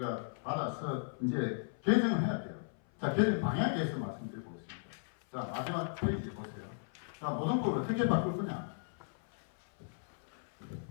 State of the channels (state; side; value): silent; right; 54 dB below the other